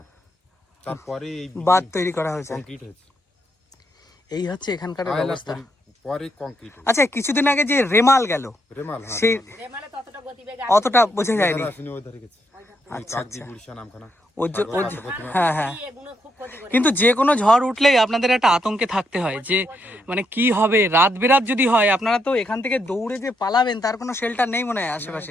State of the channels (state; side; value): normal; both; correlation 0.78